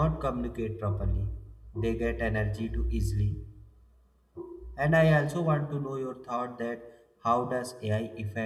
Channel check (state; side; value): identical; both; correlation 1.00